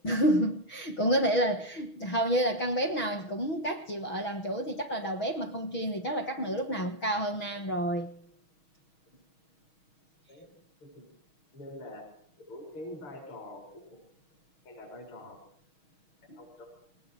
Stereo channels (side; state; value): right; late; 6.3 ms